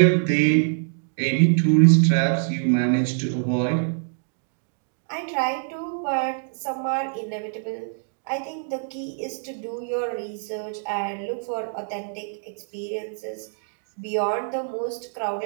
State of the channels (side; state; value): left; silent; digital silence